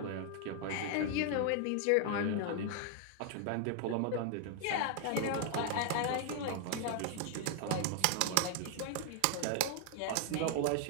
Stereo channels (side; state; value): both; different; correlation 0.00